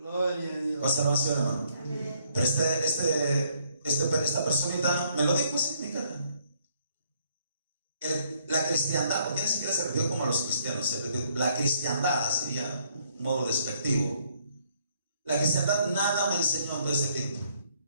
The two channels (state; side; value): inverted; both; correlation -0.68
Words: a Dios. Conservación, hermano. Pero esta personita me lo dijo así en mi cara. La cristiandad, porque ni siquiera se refirió como a los cristianos, la cristiandad sería un modo despectivo. La cristiandad nada me enseñó en todo ese tiempo.